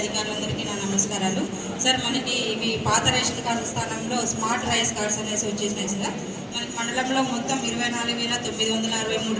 నా నమస్కారాలు. సార్, మనకి ఇవి పాత రేషన్ కార్డు స్థానంలో స్మార్ట్ రైస్ కార్డ్స్ అనేసి వచ్చేసినాయి సార్. మనకి మండలంలో మొత్తం 24,963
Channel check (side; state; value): both; identical; correlation 1.00